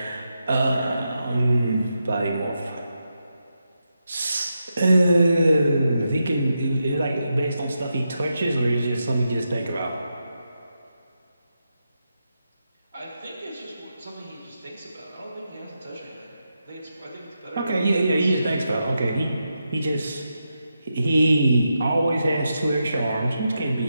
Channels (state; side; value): inverted; both; correlation -0.86